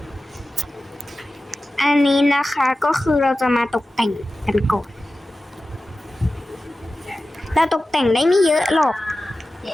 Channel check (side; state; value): both; normal; correlation 0.95